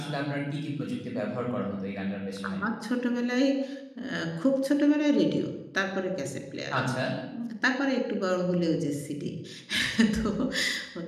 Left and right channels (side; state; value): both; identical; correlation 1.00